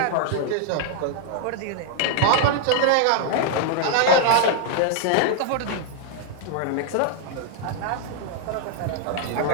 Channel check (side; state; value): both; different; correlation 0.00